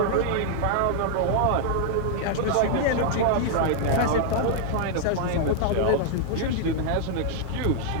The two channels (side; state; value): both; different; correlation 0.00